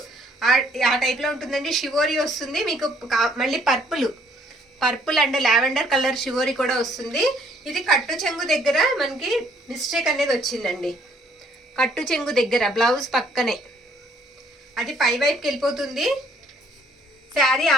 ఆ టైప్ లో ఉంటుందండి. షివోరి వస్తుంది మీకు. మళ్ళీ purple and lavender colour shibori కూడా వస్తుంది. ఇది కట్టు చెంగు దగ్గర మనకి మిస్టేక్ అనేది వచ్చిందండి. కట్టు చెంగు దగ్గర బ్లౌజ్ పక్కనే అది పై వైపుకి వెళ్ళిపోతుంది. శారీ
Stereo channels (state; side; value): normal; both; correlation 0.64